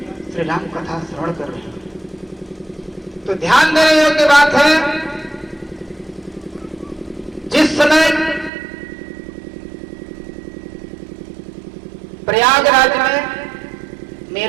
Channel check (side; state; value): left; drops out; at 8.5 s